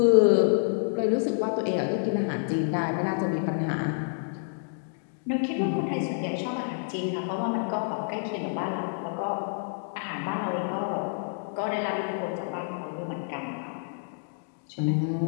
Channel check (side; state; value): right; silent; digital silence